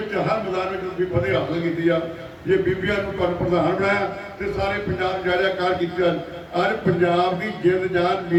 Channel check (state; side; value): identical; both; correlation 1.00